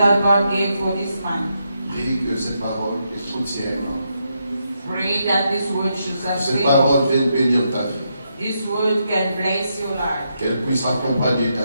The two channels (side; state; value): both; inverted; correlation -0.81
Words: God gave for this month. Prie que cette parole te soutienne. Pray that this word should Cette sustain you. parole vienne bénir ta vie. This word can bless your life. Qu'elle puisse accompagner